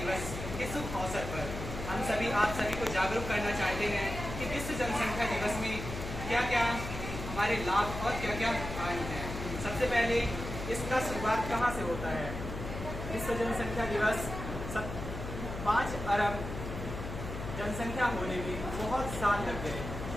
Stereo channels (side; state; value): left; noise; hum, 7 dB below the sound